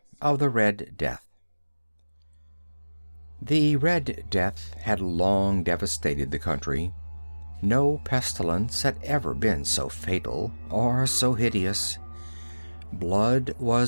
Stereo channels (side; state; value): both; inverted; correlation -1.00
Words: of the Red Death. The Red Death had long devastated the country. No pestilence had ever been so fatal or so hideous. Blood